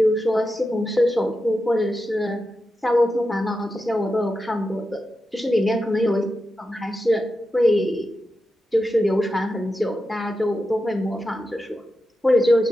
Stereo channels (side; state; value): both; normal; correlation 0.90